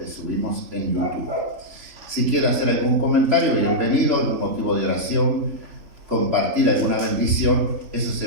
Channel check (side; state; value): left; late; 3.4 ms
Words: subimos en YouTube. Si quiere hacer algún comentario, bienvenido, algún motivo de oración, compartir alguna bendición, eso